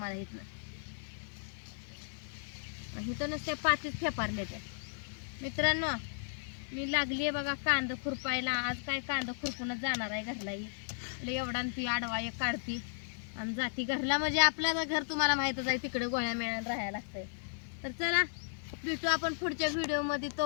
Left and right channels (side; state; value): right; silent; digital silence